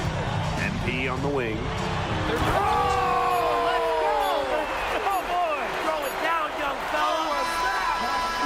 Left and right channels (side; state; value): both; identical; correlation 1.00